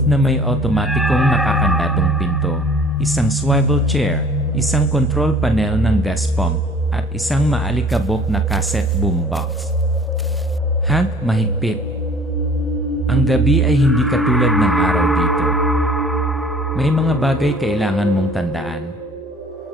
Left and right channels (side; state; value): both; normal; correlation 0.50